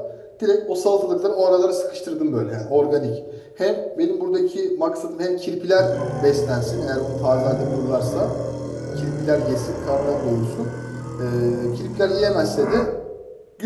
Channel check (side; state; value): both; identical; correlation 1.00